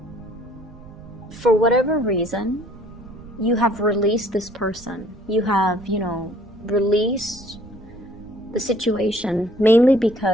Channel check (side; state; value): right; noise; rumble, 20 dB below the sound